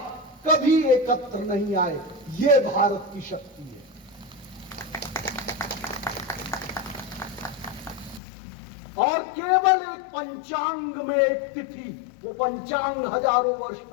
कभी एकत्र नहीं आए। ये भारत की शक्ति है। और केवल एक पंचांग में एक तिथि, वो पंचांग हजारों वर्ष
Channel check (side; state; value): right; drops out; at 8.2 s